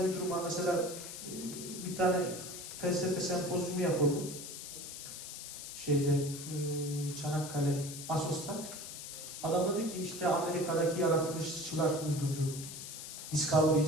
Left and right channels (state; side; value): noise; left; hiss, 9 dB below the sound